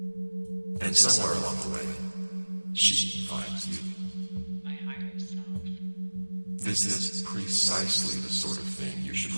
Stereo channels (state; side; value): inverted; both; correlation -1.00